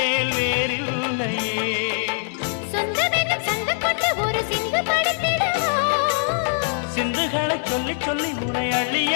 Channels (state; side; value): silent; right; 58 dB below the other